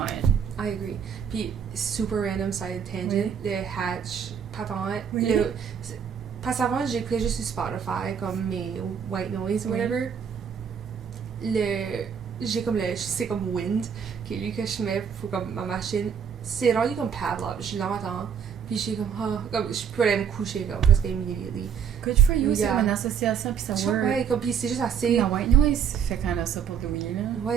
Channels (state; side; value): quieter; left; 7.4 dB